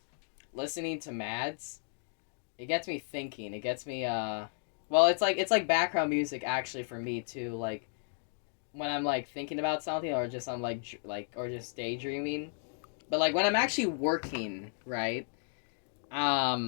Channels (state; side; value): silent; right; digital silence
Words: listening to Mads, it gets me thinking. It gets me well, it's like background music actually for me too. Like when I'm like thinking about something, or just I'm or just daydreaming. But like when I'm actually working, right?